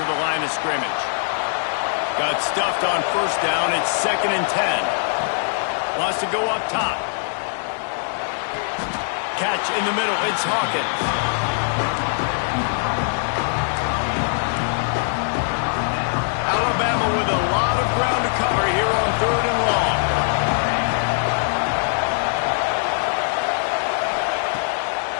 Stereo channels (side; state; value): right; silent; 64 dB below the other